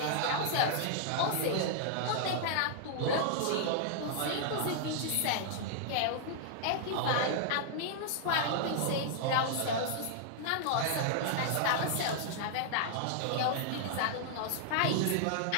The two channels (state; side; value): different; both; correlation -0.01